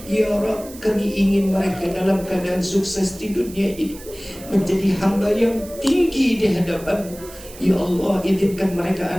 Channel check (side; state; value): right; noise; hiss, 18 dB below the sound